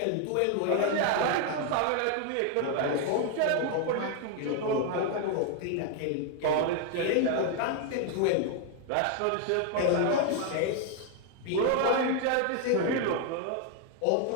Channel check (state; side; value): different; both; correlation 0.00